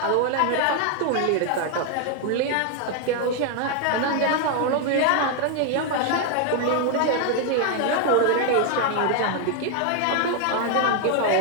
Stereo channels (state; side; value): different; both; correlation 0.00